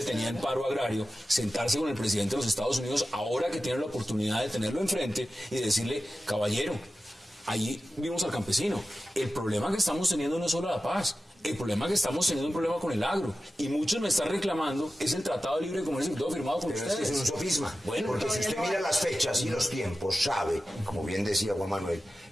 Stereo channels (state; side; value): normal; both; correlation 0.94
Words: tenía el paro agrario, sentarse con el presidente de los Estados Unidos, ahora que tiene la oportunidad de tenerlo enfrente y decirle, caballero, ahí vimos al campesino, el problema que estamos teniendo no es solo la paz. El problema que estamos teniendo un problema con el agro. Y muchos me están reclamando es el Tratado de Libre Comercio que todo firmado con ustedes. Pero es un sofisma. Bueno, porque si usted mira las fechas y los tiempos, sabe, como bien decía Juan Manuel,